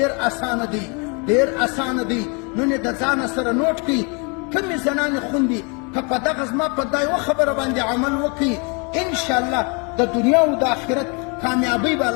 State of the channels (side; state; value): right; quieter; 33.7 dB